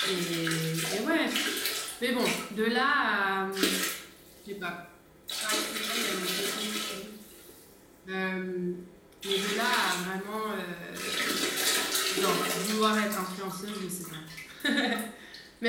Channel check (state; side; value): identical; both; correlation 1.00